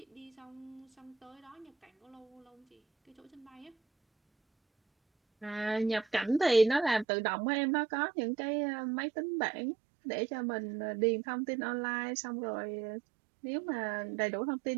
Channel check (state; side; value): drops out; left; at 7.1 s